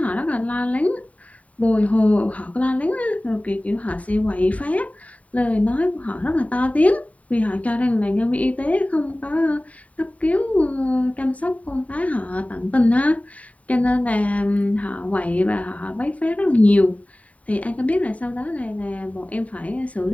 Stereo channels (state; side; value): late; right; 0.068 ms